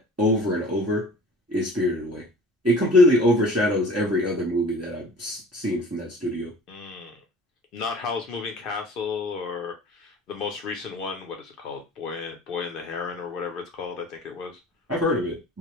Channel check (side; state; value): both; normal; correlation 0.46